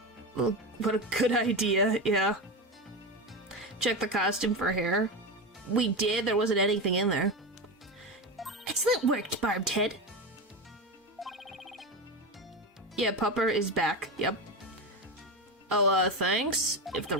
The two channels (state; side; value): normal; both; correlation 0.19